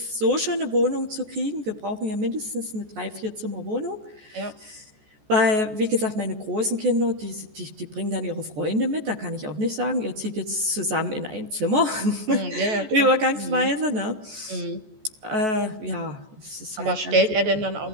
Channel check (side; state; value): left; late; 14 ms